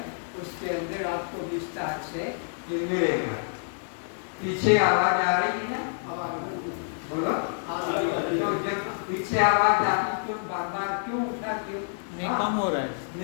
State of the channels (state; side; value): silent; right; 60 dB below the other